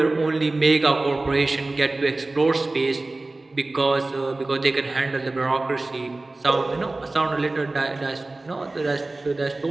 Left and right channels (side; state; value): left; quieter; 3.0 dB